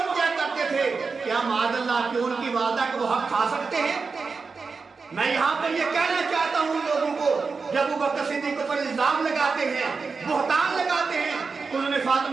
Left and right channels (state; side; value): quieter; left; 4.7 dB